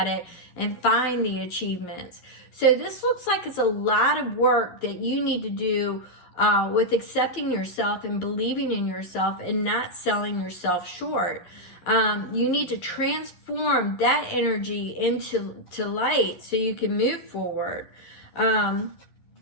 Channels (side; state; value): right; late; 11 ms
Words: it and find the achievements. So this looks like it's a lot of work that you need to do with accepting yourself and believing in yourself and not selling yourself short. You need to transform that energy into light so you can move forward.